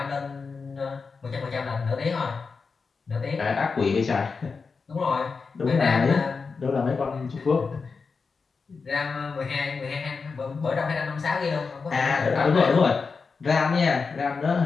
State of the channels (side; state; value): right; quieter; 4.9 dB